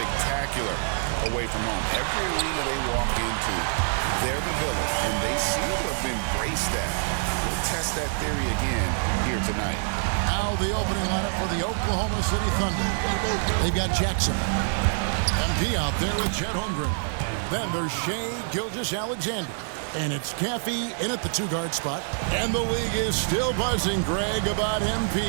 away from home. Every arena they walk into, they're the villain, and they seem to have embraced that. We'll test that theory again here tonight. Now the opening lineup for the Oklahoma City Thunder. They've got Jackson. MP out there with Chet Holmgren. Then there's Shai Gilgeous-Alexander. And it's Caffey in at the two-guard spot. And the league is still buzzing, Greg, about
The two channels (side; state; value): left; silent; digital silence